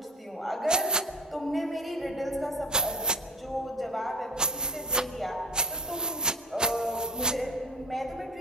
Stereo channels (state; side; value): normal; both; correlation 0.37